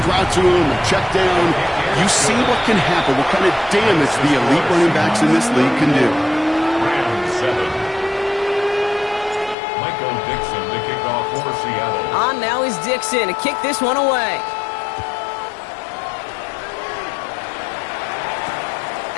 route to him, a check down, you see what can happen, what kind of damage the elite running backs in this league can do. Round 7. Michael Dixon to kick off for Seattle. On now is Dixon to kick this one away.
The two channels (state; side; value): drops out; right; at 9.6 s